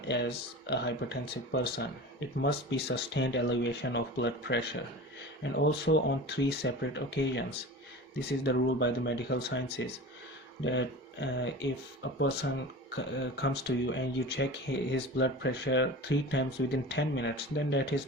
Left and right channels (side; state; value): both; normal; correlation 0.34